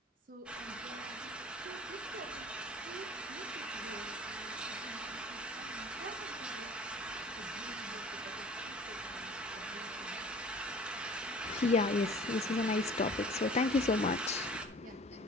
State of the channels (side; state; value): both; normal; correlation 0.46